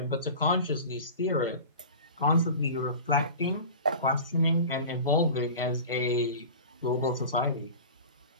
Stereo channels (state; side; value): inverted; both; correlation -0.36